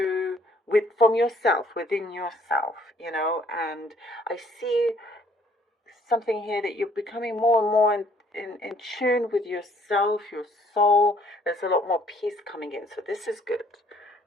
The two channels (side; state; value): both; normal; correlation 0.61